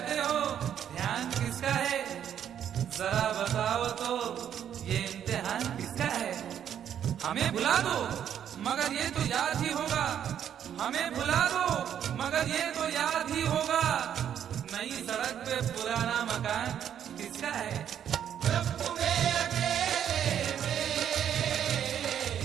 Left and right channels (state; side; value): quieter; left; 9.5 dB